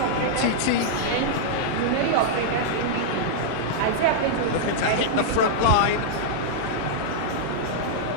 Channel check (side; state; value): both; different; correlation -0.02